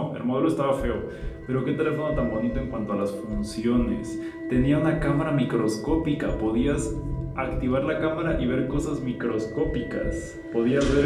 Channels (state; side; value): identical; both; correlation 1.00